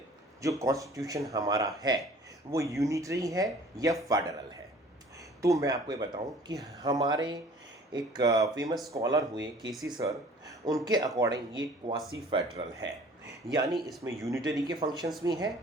जो कॉन्स्टिट्यूशन हमारा है वो यूनिटरी है या फेडरल है। तो मैं आपको ये बताऊं कि हमारे एक फेमस स्कॉलर हुए केसी सर, उनके अकॉर्डिंग ये क्वासी फेडरल है, यानी इसमें यूनिटरी के फंक्शंस भी हैं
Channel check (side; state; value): both; normal; correlation 0.50